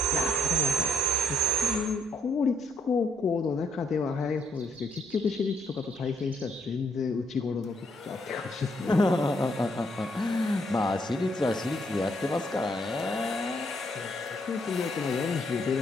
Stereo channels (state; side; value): normal; both; correlation 0.73